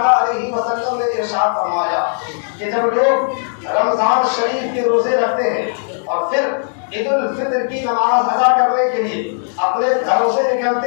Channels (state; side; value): silent; right; digital silence